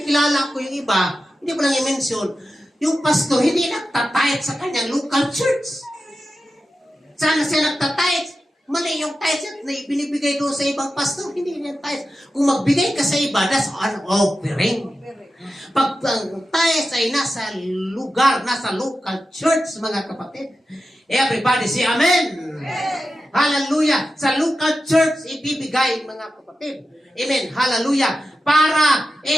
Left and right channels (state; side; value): normal; both; correlation 0.92